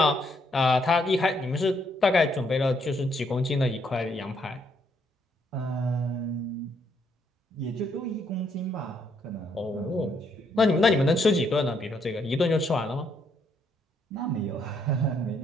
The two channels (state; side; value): normal; both; correlation 0.72